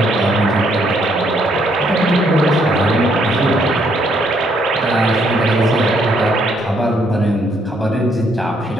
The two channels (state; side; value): normal; both; correlation 0.70